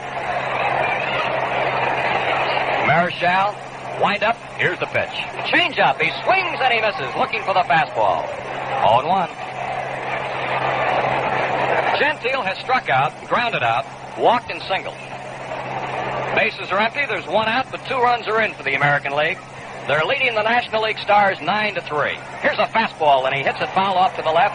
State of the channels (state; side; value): identical; both; correlation 1.00